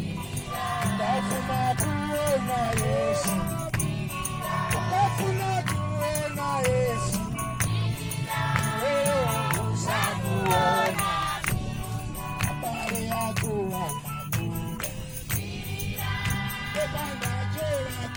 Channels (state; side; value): identical; both; correlation 1.00